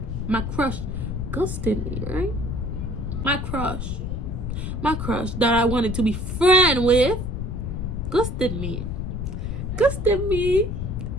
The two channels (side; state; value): left; noise; rumble, 3 dB below the sound